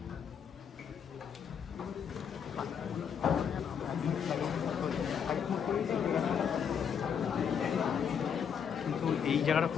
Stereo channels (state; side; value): quieter; right; 7.6 dB